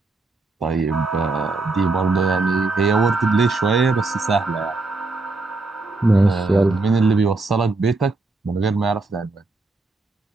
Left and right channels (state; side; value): quieter; left; 3.4 dB